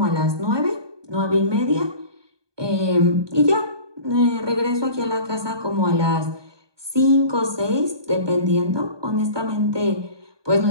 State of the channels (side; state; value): left; late; 1.2 ms